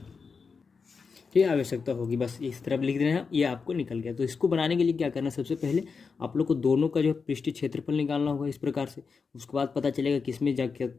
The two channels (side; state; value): right; quieter; 5.2 dB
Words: ठीक है, आवश्यकता होगी, बस इस तरफ लिख देना है, ये आपको निकल गया। तो इसको बनाने के लिए क्या करना है, सबसे पहले आप लोग को दोनों का जो पृष्ठीय क्षेत्रफल निकालना होगा इस प्रकार से। उसके बाद पता चलेगा किस में जाके